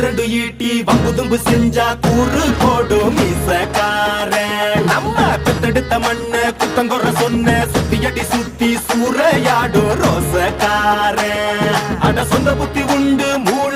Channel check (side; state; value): both; identical; correlation 1.00